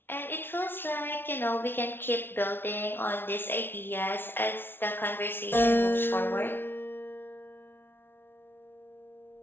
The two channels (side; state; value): right; late; 0.11 ms